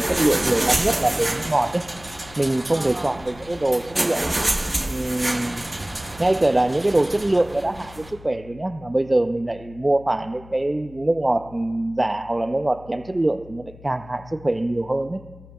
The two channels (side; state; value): left; noise; hum, 20 dB below the sound